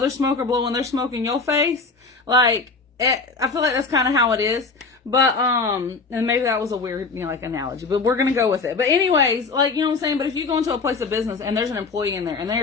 smoker blowing their smoke in your face, like I feel like that's kind of how it is. But and maybe that was a weird analogy, but we're gonna go with it. But anyways, like, you know what I'm saying. But if you go into a place of business and there's an employee in there and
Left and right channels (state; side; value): quieter; right; 4.2 dB